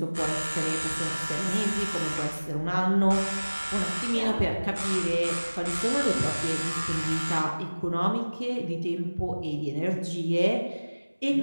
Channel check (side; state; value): both; inverted; correlation -1.00